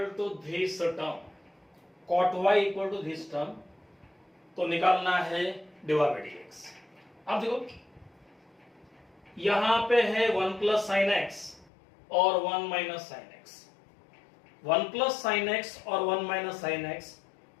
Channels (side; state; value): right; drops out; at 11.7 s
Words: to this term, cot y equal to this term, तो निकालना है dy by dx। अब देखो यहां पे है 1 प्लस साइन एक्स और 1 minus sine x. 1 plus sine x और 1 माइनस साइन एक्स,